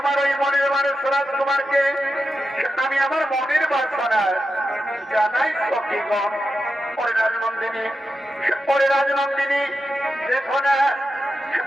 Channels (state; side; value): normal; both; correlation 0.89